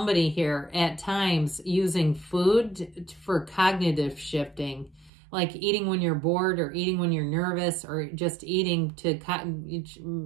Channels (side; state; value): left; drops out; at 5.1 s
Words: here at times using food for cognitive shifting, like eating when you're bored or eating when you're nervous, or just eating to,